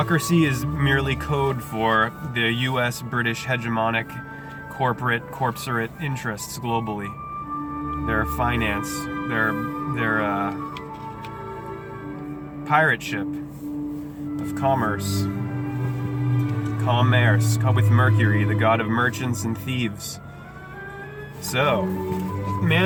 is merely code for the U.S. British hegemonic corporate corporate interests globally. Their finance, their pirate ship of commerce with Mercury, the god of merchants and thieves. So,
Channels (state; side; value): identical; both; correlation 1.00